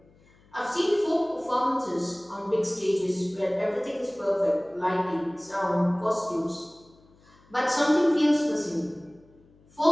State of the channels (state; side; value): noise; left; hum, 30 dB below the sound